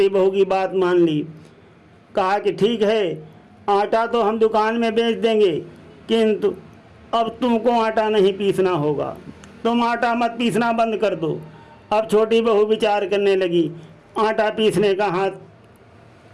बहू की बात मान ली। कहा कि ठीक है, आटा तो हम दुकान में बेच देंगे, किंतु अब तुमको आटा नहीं पीसना होगा, तुम आटा मत पीसना बंद कर दो। अब छोटी बहू विचार करने लगी, आटा पीसने का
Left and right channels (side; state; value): both; identical; correlation 1.00